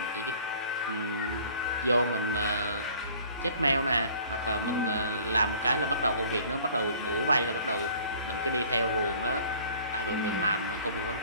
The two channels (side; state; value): both; inverted; correlation -0.51